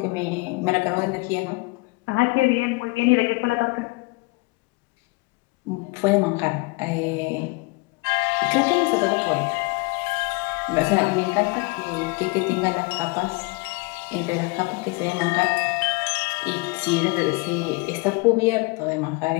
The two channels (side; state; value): right; quieter; 26.2 dB